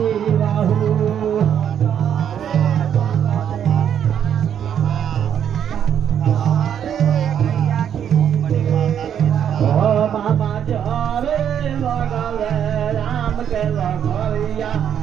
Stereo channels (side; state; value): left; quieter; 9.0 dB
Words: बहू बाबा जावे लगले राम के लगैया